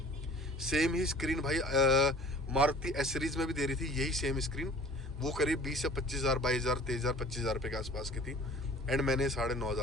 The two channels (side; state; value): both; normal; correlation 0.48